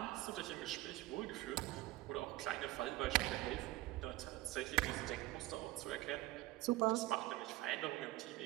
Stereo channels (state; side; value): quieter; left; 18.2 dB